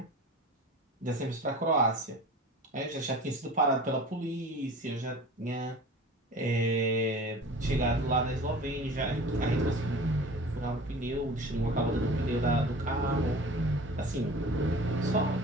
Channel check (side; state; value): both; normal; correlation 0.40